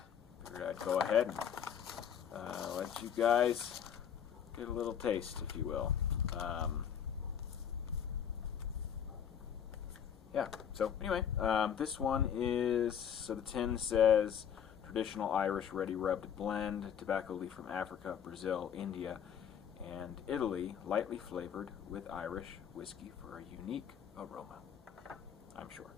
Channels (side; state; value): right; quieter; 8.5 dB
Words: figured I'd go ahead and let you guys get a little taste, if you will. Yeah, so anyway, this one is, so the tin says traditional Irish ready rubbed blend, tobacco leaf from Africa, Brazil, India, and Italy, lightly flavored with Irish whiskey for a unique aroma, I'm sure.